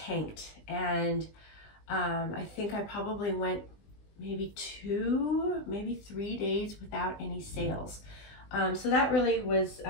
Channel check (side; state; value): right; late; 20 ms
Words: and I think I probably went maybe 2, maybe 3 days without any sales. So that really was